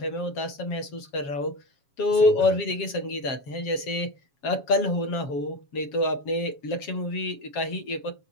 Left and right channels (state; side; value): late; right; 7.3 ms